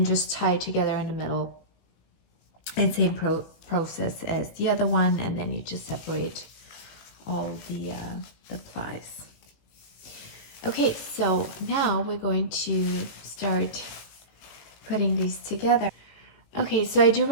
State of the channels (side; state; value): right; late; 18 ms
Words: just tie it together in the middle, and same process as the other one, and then you just separate all the plies. Okay, so now we're going to start putting these together. Okay, so I do